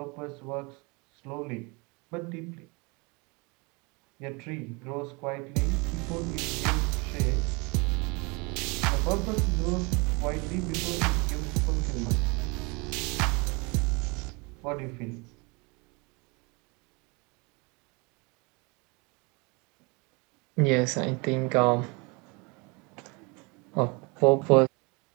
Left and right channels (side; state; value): left; quieter; 28.9 dB